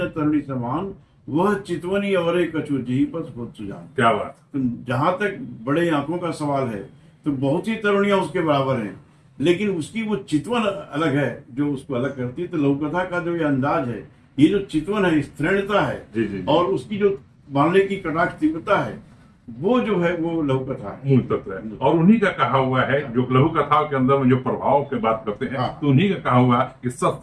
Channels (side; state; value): both; identical; correlation 1.00